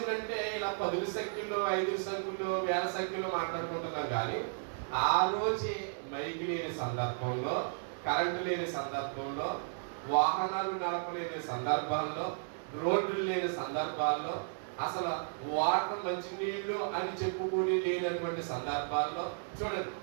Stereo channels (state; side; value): silent; left; digital silence